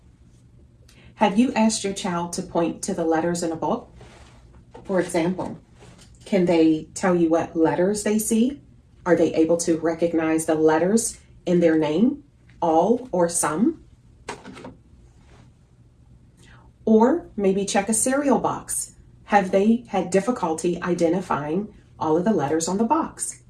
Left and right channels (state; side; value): identical; both; correlation 1.00